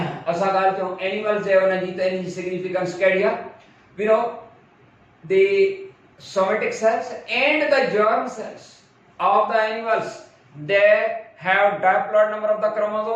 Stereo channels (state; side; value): identical; both; correlation 1.00